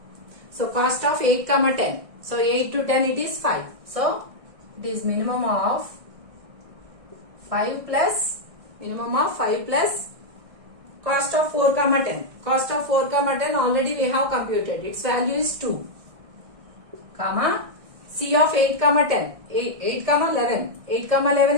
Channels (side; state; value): left; late; 1.6 ms